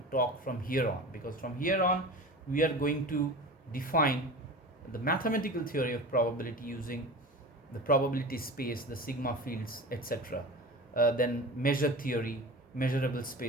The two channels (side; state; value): both; normal; correlation 0.33